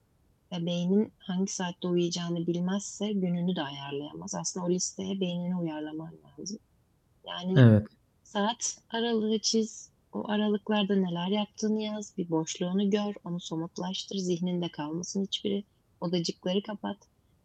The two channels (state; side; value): identical; both; correlation 1.00